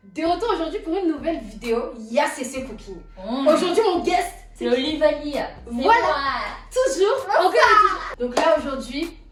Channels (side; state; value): both; identical; correlation 1.00